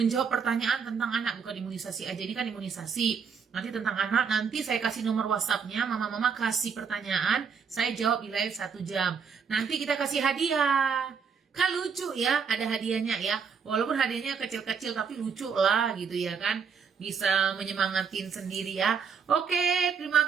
pertanyaan tentang anak, bukan imunisasi aja. Ini kan imunisasi. Nanti tentang anak, nanti saya kasih nomor WhatsApp-nya, mama-mama kasih pertanyaan, saya jawab di live 1 jam. Nanti kita kasih hadiah. Kan lucu ya, ada hadiahnya ya. Walaupun hadiahnya kecil-kecil tapi lucu lah gitu ya kan. Bisa menyemangatin sendiri ya. Oke, terima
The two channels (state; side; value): quieter; left; 6.2 dB